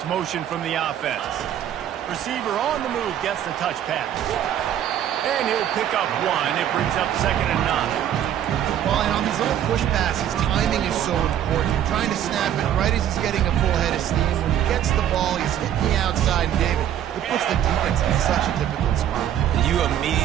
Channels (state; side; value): quieter; left; 10.6 dB